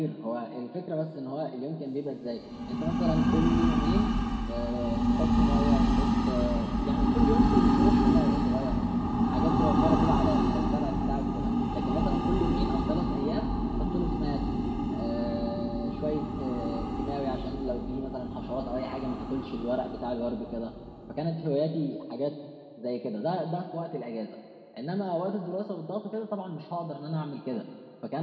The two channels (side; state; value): both; identical; correlation 1.00